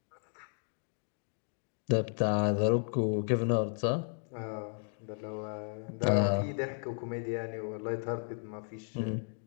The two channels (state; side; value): silent; right; 55 dB below the other